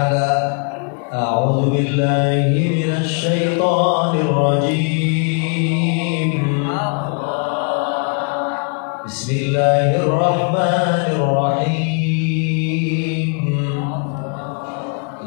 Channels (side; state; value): right; quieter; 39.4 dB